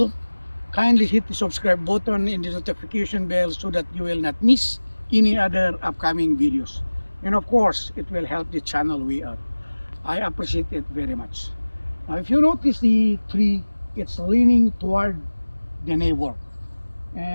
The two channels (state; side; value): inverted; both; correlation -1.00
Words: kindly hit the subscribe button and the notification bell so that you will not miss any other upcoming videos. And of course, it will help the channel way out. I appreciate it very much. Now, if you notice the tree, it's leaning toward the neighbor.